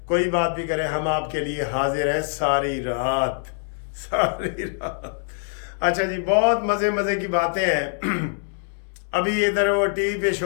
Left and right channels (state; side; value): silent; right; 63 dB below the other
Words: कोई बात भी करें, हम आपके लिए हाजिर हैं सारी रात सारी रात। अच्छा जी, बहुत मज़े मज़े की बातें हैं। अभी इधर वो टीवी पे